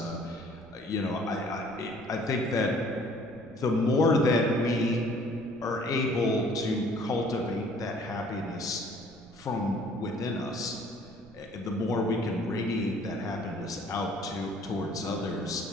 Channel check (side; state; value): right; noise; rumble, 23 dB below the sound